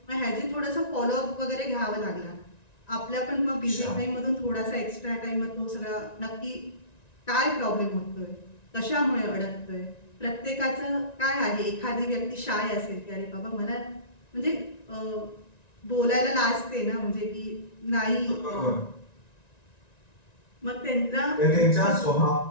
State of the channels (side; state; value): right; late; 1.9 ms